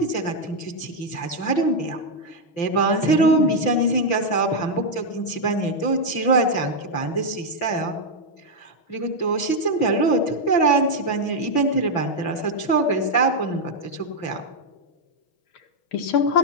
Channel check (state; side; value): late; right; 5.8 ms